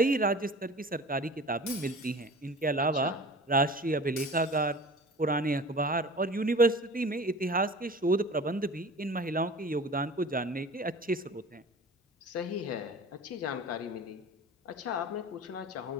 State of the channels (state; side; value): normal; both; correlation 0.40